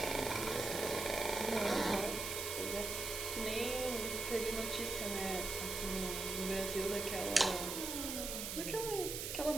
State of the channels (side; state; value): right; noise; hiss, 4 dB below the sound